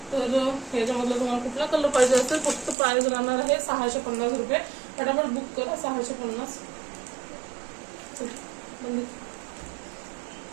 तर याच्यामधला तुम्हाला कुठला कलर पाहिजे असेल फक्त प्राइस राहणार आहे 650 रुपये। फटाफट बुक करा, 650।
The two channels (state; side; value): drops out; left; at 2.8 s